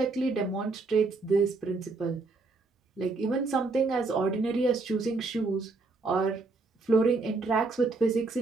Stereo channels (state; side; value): quieter; left; 3.7 dB